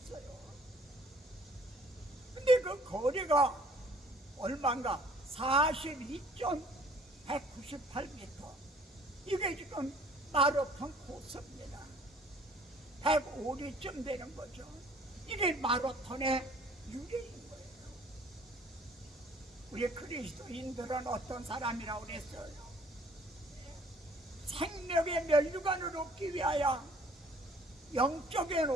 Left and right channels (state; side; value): normal; both; correlation 0.56